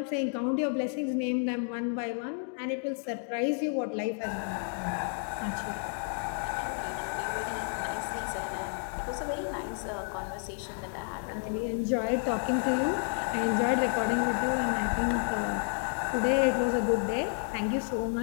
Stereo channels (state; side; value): silent; right; 57 dB below the other